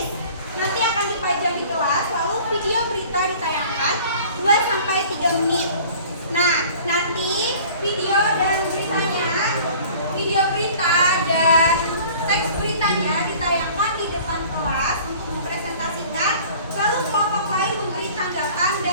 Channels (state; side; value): inverted; both; correlation -0.47